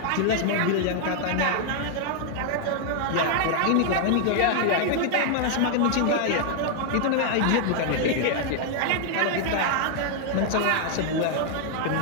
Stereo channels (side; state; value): both; different; correlation 0.00